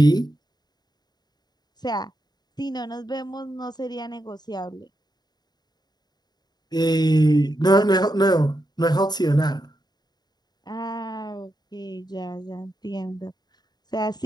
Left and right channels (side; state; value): right; late; 0.20 ms